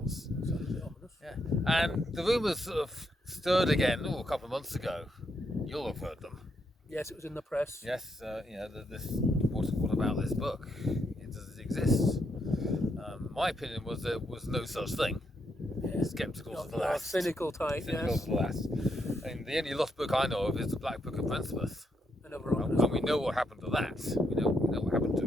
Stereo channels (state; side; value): normal; both; correlation 0.78